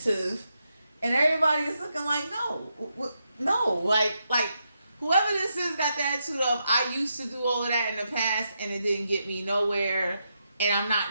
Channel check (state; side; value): inverted; both; correlation -0.83